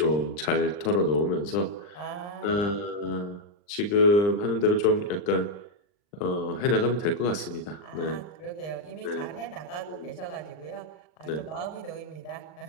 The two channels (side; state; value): right; late; 39 ms